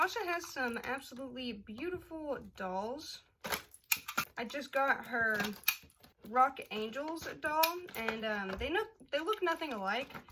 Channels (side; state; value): both; identical; correlation 1.00